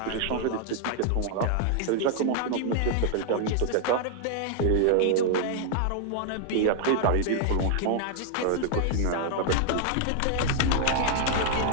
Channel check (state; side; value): different; both; correlation 0.00